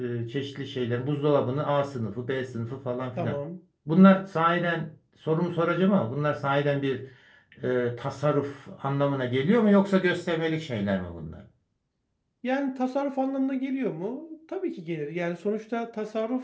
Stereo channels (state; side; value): identical; both; correlation 1.00